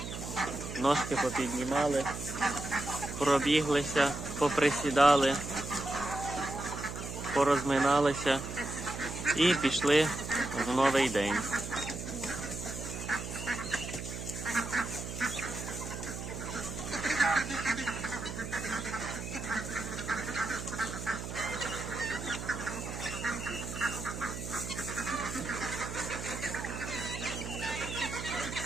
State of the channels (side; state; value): right; noise; hum, 7 dB below the sound